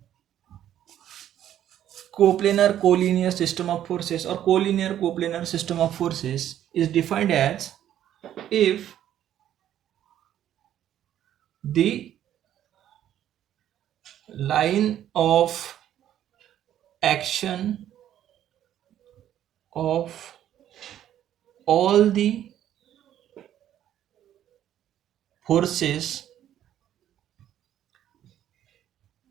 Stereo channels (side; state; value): left; quieter; 11.3 dB